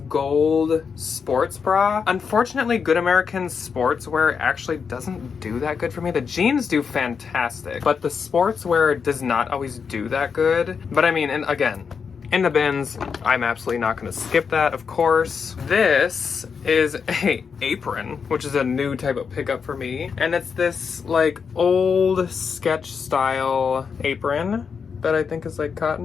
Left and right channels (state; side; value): quieter; right; 6.1 dB